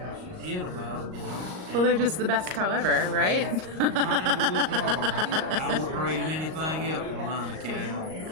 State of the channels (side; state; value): left; late; 38 ms